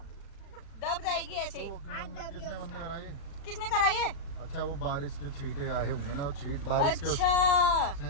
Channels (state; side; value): late; right; 36 ms